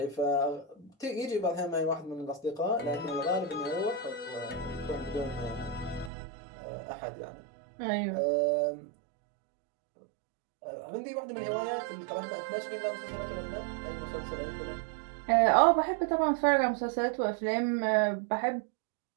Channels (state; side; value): drops out; left; at 6.1 s